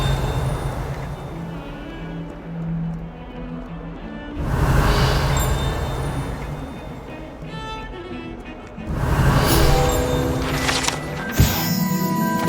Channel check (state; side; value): identical; both; correlation 1.00